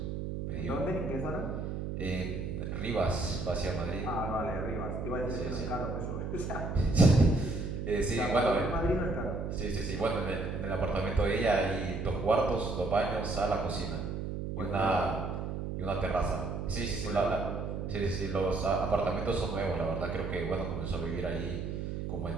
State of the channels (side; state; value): right; noise; hum, 4 dB below the sound